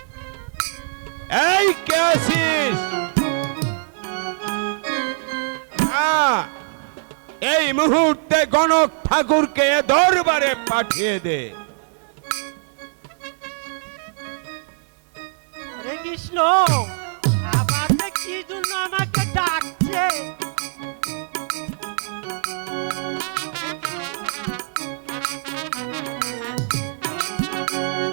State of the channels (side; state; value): left; silent; digital silence